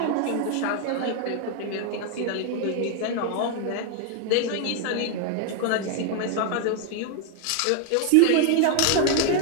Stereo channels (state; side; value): different; both; correlation 0.00